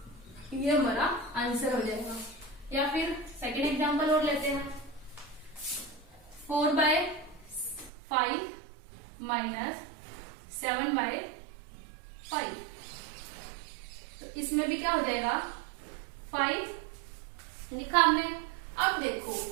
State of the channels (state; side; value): drops out; left; at 7.9 s